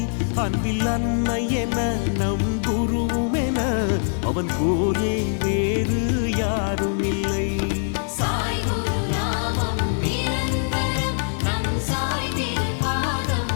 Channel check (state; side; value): silent; right; digital silence